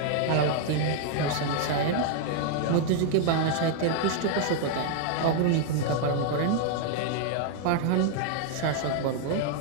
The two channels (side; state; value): both; different; correlation 0.00